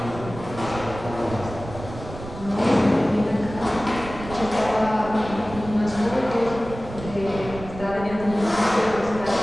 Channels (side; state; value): right; noise; rumble, 12 dB below the sound